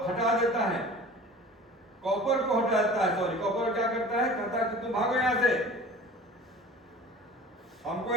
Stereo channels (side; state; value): both; normal; correlation 0.42